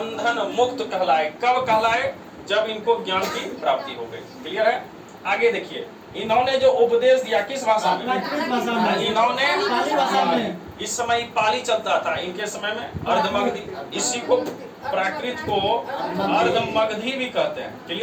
मुक्त कहलाए। कब कहलाए? जब इनको ज्ञान की प्राप्ति हो गई। क्लियर है? आगे देखिए, इन्होंने जो उपदेश दिया किस भाषा में? इन्होंने पाली भाषा में। इस समय पाली चलता था, इनके समय में अर्धमगधी, इसी को प्राकृत को अर्धमगधी भी कहते हैं।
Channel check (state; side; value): identical; both; correlation 1.00